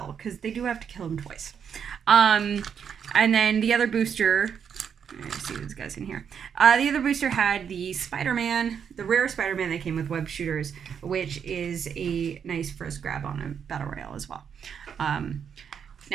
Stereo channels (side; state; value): left; quieter; 7.5 dB